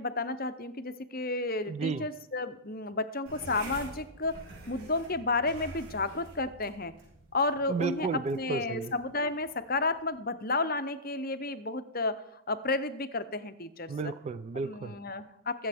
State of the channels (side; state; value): both; normal; correlation -0.18